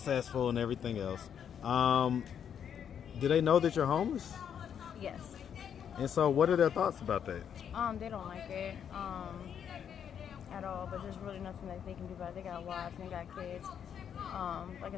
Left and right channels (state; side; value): quieter; right; 8.4 dB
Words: and everything else. Do they know that you're homeless? Yes. And so, what are their thoughts about that? They don't like it at all, but there's really nothing that they can do about it. They got wives and they got kids. Like I